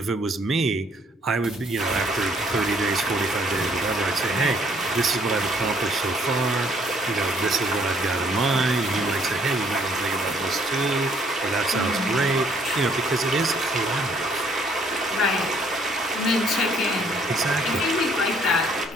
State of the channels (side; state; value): both; normal; correlation 0.64